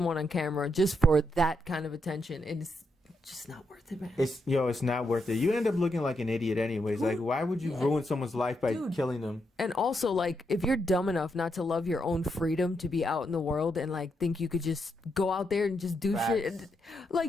on camera just for that kind of attention. It's just not worth it, man. It's not worth it. You end up looking like an idiot anyways. Like, why would you ruin someone's life by killing them? And also, like, if you're dumb enough not to love your own freedom to be out in the world and like think you could just go out there and just do shit,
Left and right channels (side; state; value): both; normal; correlation 0.81